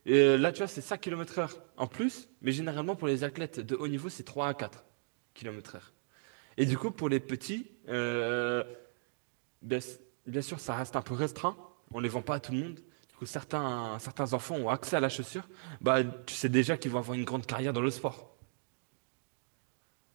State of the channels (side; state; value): left; silent; digital silence